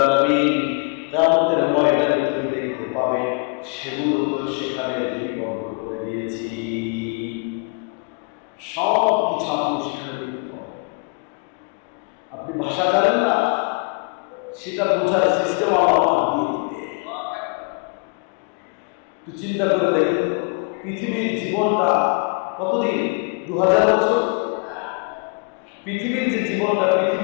আলামিন কিয়ামতের ময়দানে তুমি দেখতে পাবে সেগুলো তো সেখানে লিপিবদ্ধ করে দিয়েছি। সব কিছু আপনি সেখানে দেখতে পাবেন। আপনি ভাষা জানেন না, সেটা বোঝার সিস্টেম আল্লাহ দিয়ে দিবে। একটু চিন্তা করে দেখেন, পৃথিবীর জীবনটা কতদিন? 2000 বছর। পৃথিবীর যে জীবনটা,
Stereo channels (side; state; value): right; quieter; 33.2 dB